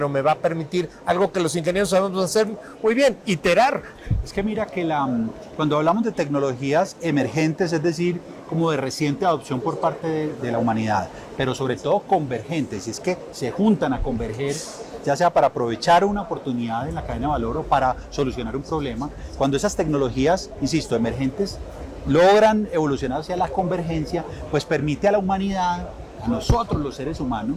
me va a permitir algo que los ingenieros sabemos hacer muy bien, iterar. Es que mira que cuando hablamos de tecnologías emergentes, es decir, como de reciente adopción por parte de la humanidad, pero sobre todo convergentes, y es que se juntan a converger, ya sea para aprovechar una oportunidad en la cadena de valor o para solucionar un problema, cuando esas tecnologías, insisto, emergentes, logran evolucionar hacia la convergencia, pues permite a la humanidad, a nosotros los seres humanos,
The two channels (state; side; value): identical; both; correlation 1.00